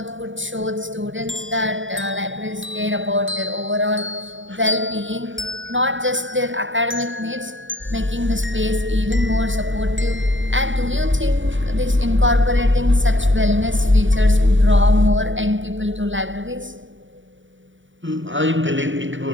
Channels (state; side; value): late; left; 0.56 ms